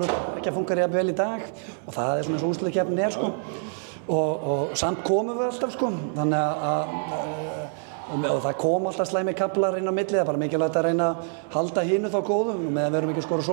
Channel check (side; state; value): left; silent; 61 dB below the other